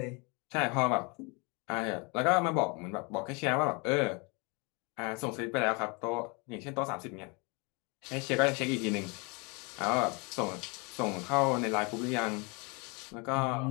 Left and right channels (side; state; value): right; quieter; 30.4 dB